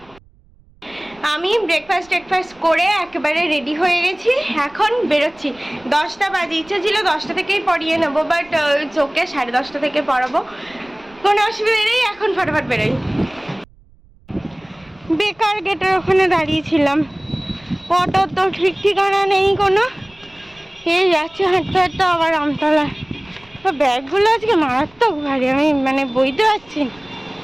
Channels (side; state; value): right; noise; rumble, 29 dB below the sound